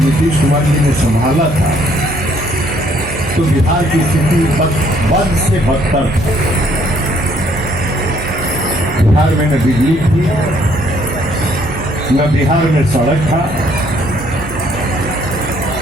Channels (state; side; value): noise; right; hum, 13 dB below the sound